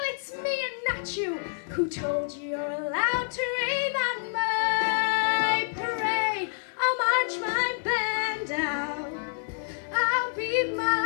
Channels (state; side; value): silent; right; digital silence